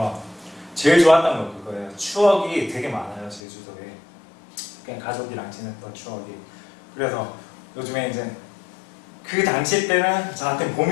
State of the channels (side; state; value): right; drops out; at 3.4 s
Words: 제일 좋았던 건 그거예요. 추억이 되게 많아요, 제주도에. 그냥 가족이랑 지냈던 추억이. 그래서 요즘에 이제 그 당시 때는 저한테